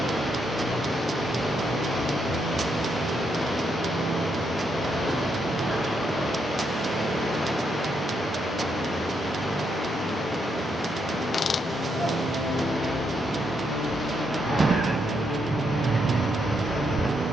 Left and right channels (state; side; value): normal; both; correlation 0.78